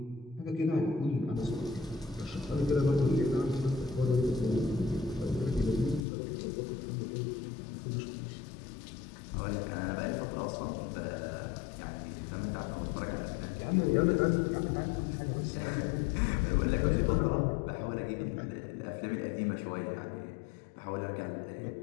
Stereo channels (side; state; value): right; drops out; at 6.1 s